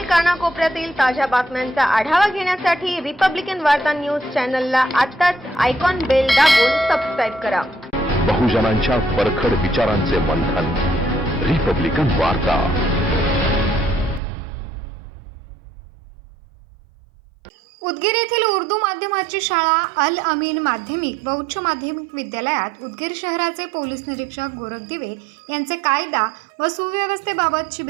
कानाकोपऱ्यातील ताज्या बातम्यांचा आढावा घेण्यासाठी रिपब्लिकन वार्ता न्यूज चॅनलला आताच आयकॉन बेल दाबून सबस्क्राईब करा. बहुजनांच्या परखड विचारांचे मंथन. रिपब्लिकन वार्ता. उदगीर येथील उर्दू माध्यमाची शाळा अल अमीन माध्यमिक व उच्च माध्यमिक विद्यालयात उदगीर शहराचे पोलीस निरीक्षक गोरख दिवे यांचे कायदा व सुव्यवस्थेबाबत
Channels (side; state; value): left; drops out; at 14.2 s